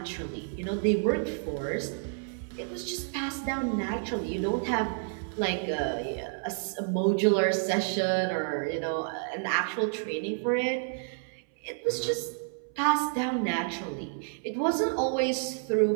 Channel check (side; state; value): left; silent; 58 dB below the other